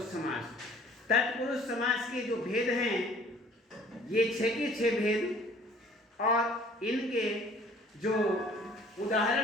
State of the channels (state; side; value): normal; both; correlation 0.54